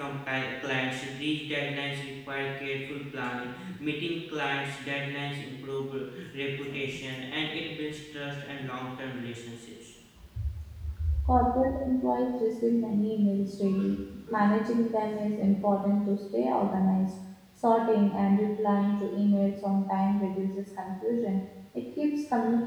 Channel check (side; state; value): both; identical; correlation 1.00